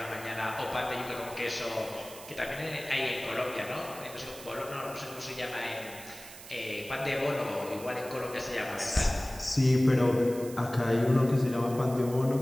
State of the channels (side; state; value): right; noise; hiss, 15 dB below the sound